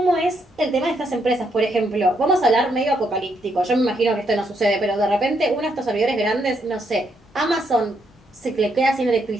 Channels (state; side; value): normal; both; correlation 0.76